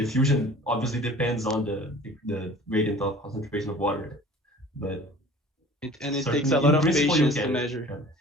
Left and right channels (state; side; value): normal; both; correlation 0.46